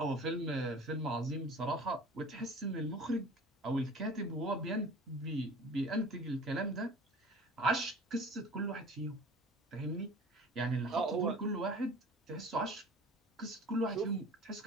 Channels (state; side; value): normal; both; correlation 0.42